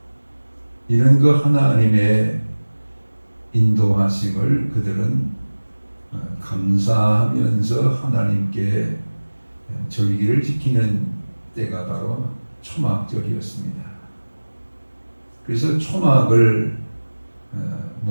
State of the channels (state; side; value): inverted; both; correlation -1.00